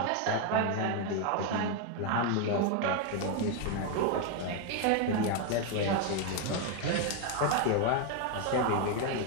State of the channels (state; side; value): different; both; correlation 0.01